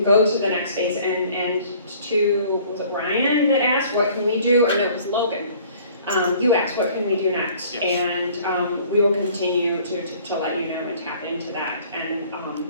go to the next phase, and to, was it Ryan that asked, what can we do, or no, it was Logan. You asked, what can we do next? Yes. And we will continue to let you know and tap into that. And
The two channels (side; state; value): both; inverted; correlation -0.53